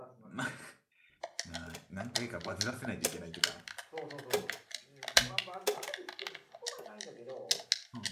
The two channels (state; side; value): identical; both; correlation 1.00